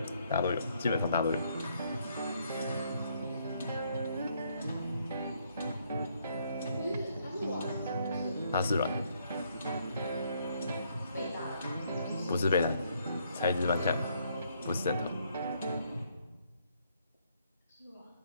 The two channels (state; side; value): inverted; both; correlation -0.70